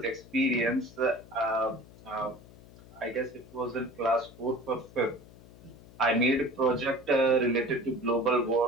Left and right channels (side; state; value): left; noise; hum, 21 dB below the sound